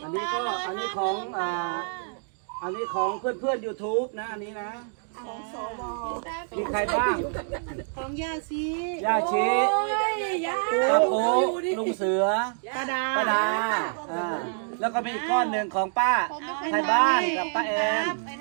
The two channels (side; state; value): left; silent; 60 dB below the other